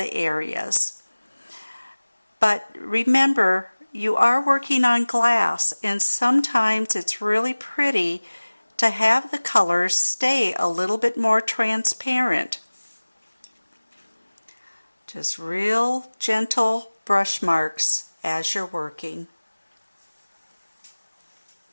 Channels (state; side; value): inverted; both; correlation -1.00